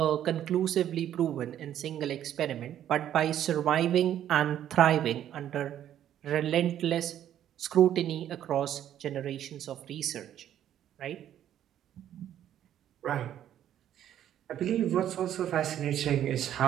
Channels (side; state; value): left; quieter; 10.9 dB